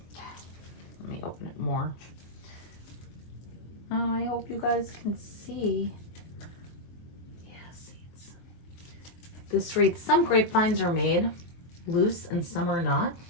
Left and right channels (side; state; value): right; late; 23 ms